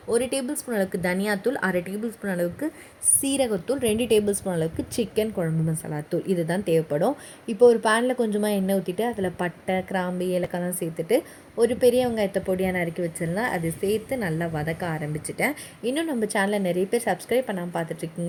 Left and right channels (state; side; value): identical; both; correlation 1.00